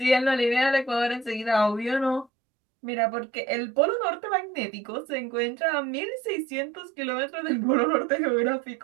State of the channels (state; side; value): drops out; left; at 2.3 s